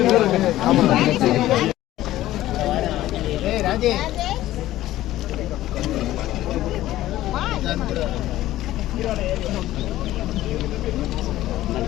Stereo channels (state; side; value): quieter; right; 14.9 dB